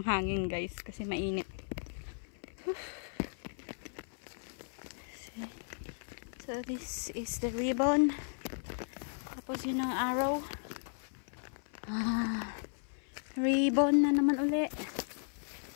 hangin guys kasi mainit. So this is the ribbon. Tapos yun ang arrow. Ribbon na naman uli.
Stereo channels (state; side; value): silent; right; 54 dB below the other